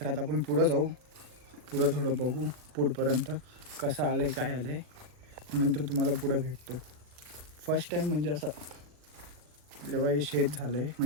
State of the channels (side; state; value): left; late; 40 ms